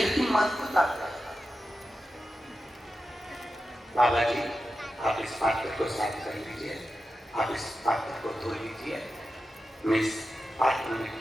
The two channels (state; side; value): normal; both; correlation 0.91